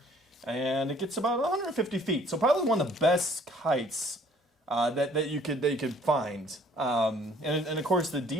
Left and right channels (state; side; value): normal; both; correlation 0.57